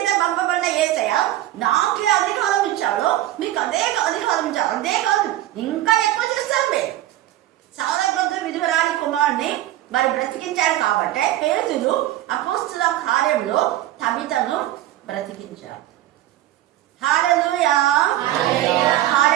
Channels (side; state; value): left; quieter; 14.2 dB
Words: పంపబడిన యేసయ్య నాకే అధికారం ఇచ్చాడు, మీకు అదే అధికారం ఇచ్చాడు. అదే కాదు ఇంకా ఎక్కువ చేస్తారు. మీరు సారబద్ధ విధురాలి కుమారుని మరి బ్రతికించాడు కాబట్టి పేతురు అపోస్తుల కార్యంలో తబితను బ్రతికించాడు. హల్లెలూయా